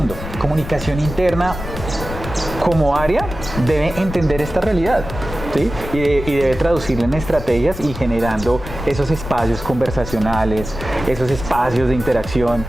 comunicación interna como área debe entender esta realidad. ¿Sí? Y debe traducirla en estrategias y generando esos espacios conversacionales, esos espacios de interacción,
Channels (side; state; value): left; noise; rumble, 9 dB below the sound